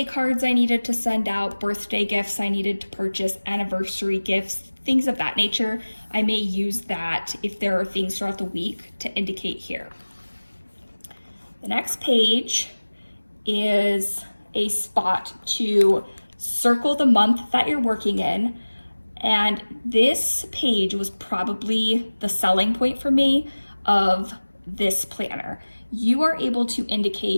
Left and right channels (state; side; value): inverted; both; correlation -1.00